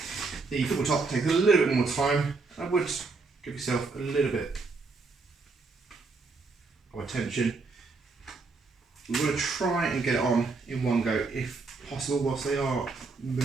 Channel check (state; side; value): quieter; left; 4.1 dB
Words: The football top takes a little bit more time. I would give yourself a little bit of attention. We want to try and get it on in one go if possible, whilst they are